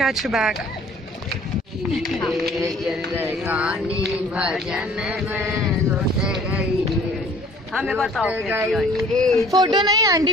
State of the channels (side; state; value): both; normal; correlation 0.53